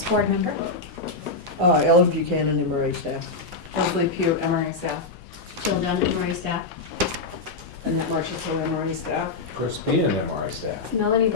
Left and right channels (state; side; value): quieter; right; 3.5 dB